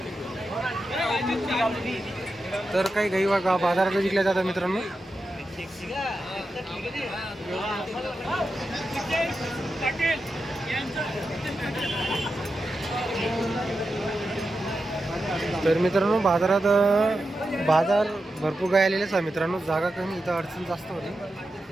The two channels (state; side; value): normal; both; correlation 0.89